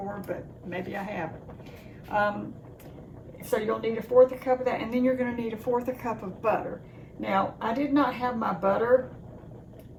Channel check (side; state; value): both; identical; correlation 1.00